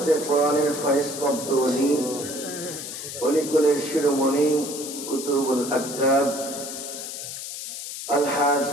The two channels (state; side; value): noise; left; hiss, 8 dB below the sound